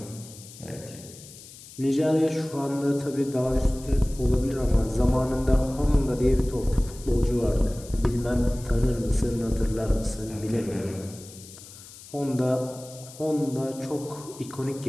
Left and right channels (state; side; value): noise; left; hiss, 18 dB below the sound